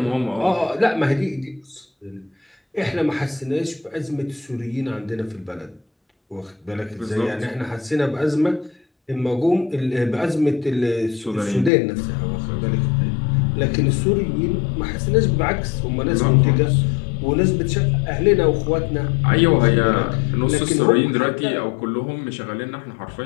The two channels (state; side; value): drops out; right; at 11.7 s